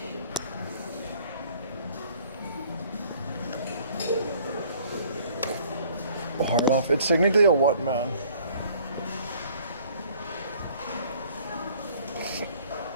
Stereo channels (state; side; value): inverted; both; correlation -0.56